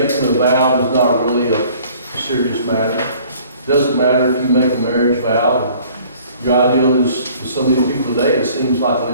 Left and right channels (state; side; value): inverted; both; correlation -0.54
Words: a vow is not really a serious matter. It doesn't matter if you make a marriage vow. Your ideal is, for some of these people today, it seems like